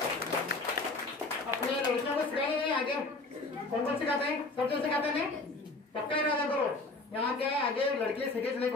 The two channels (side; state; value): right; quieter; 3.3 dB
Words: अपने लड़कियों को सिखाए नहीं आगे कौन कौन सिखाते हैं? सब जो सिखाते हैं पक्का इरादा करो यहाँ के आगे लड़के सीखे नहीं